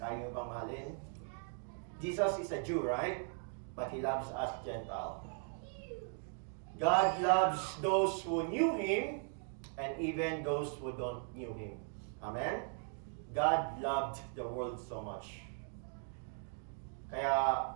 nyo bang mahalin? Jesus is a Jew, right? But He loves us Gentile. God loves those who knew Him and even those who don't knew Him. Amen? God loved the world so much. Kaya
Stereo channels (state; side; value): silent; left; 52 dB below the other